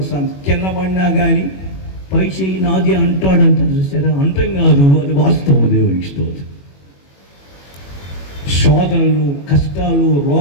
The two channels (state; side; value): late; right; 21 ms